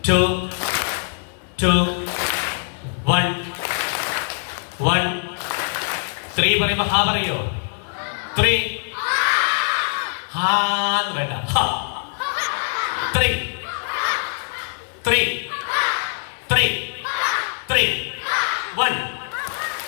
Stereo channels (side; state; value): right; silent; digital silence